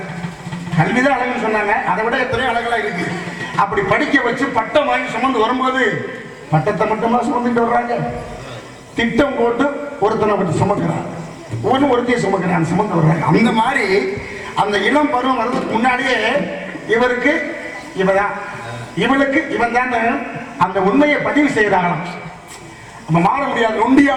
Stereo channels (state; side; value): identical; both; correlation 1.00